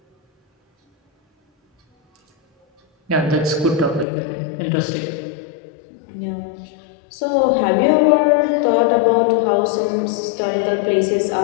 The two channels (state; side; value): drops out; right; at 4.0 s